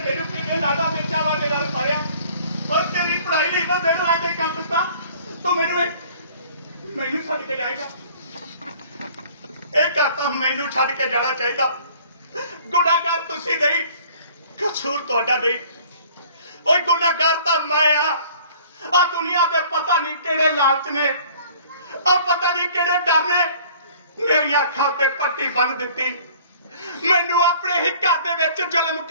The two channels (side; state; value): both; inverted; correlation -0.52